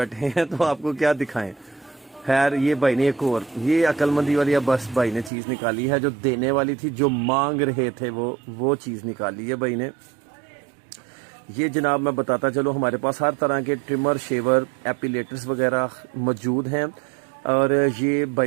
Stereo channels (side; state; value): left; drops out; at 5.3 s